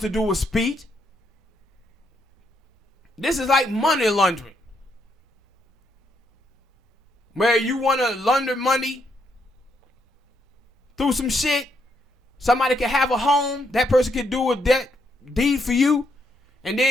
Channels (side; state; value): both; normal; correlation 0.76